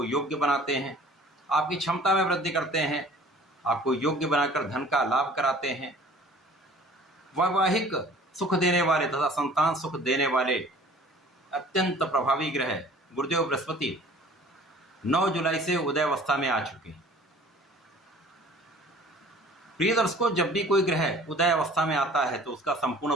योग्य बनाते हैं, आपकी क्षमता में वृद्धि करते हैं, आपको योग्य बनाकर धन का लाभ कराते हैं, वैवाहिक सुख देने वाले तथा संतान सुख देने वाले अत्यंत प्रभावी ग्रह गुरुदेव बृहस्पति 9 जुलाई से उदय अवस्था में आ चुके हैं। प्रिय दर्शकों, जब भी कोई ग्रह उदय अवस्था में आता है तो उसका संपूर्ण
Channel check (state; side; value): normal; both; correlation 0.49